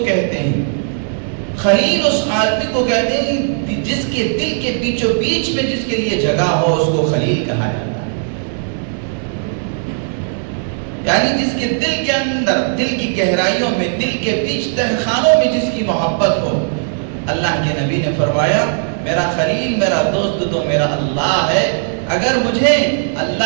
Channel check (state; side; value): silent; left; 59 dB below the other